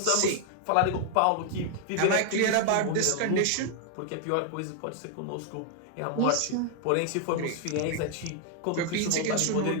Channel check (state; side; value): different; both; correlation 0.00